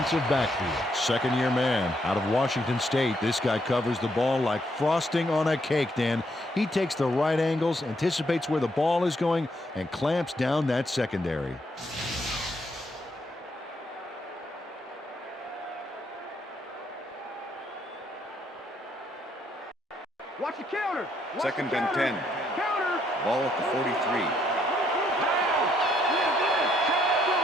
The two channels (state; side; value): normal; both; correlation 0.73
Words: backfield. 2nd-year man out of Washington State. This guy covers the ball like frosting on a cake, Dan. He takes the right angles, anticipates where the ball is going, and clamps down that secondary. Watch the counter. 2nd and 10. Ball at the 43.